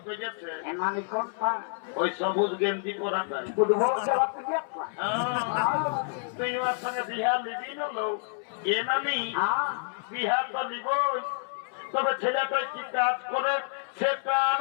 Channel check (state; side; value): silent; right; 59 dB below the other